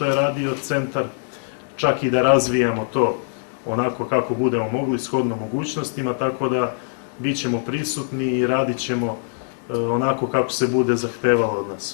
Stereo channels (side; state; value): right; silent; digital silence